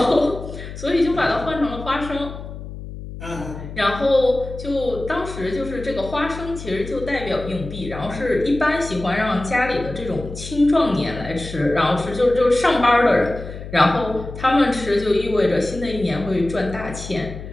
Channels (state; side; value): noise; left; hum, 11 dB below the sound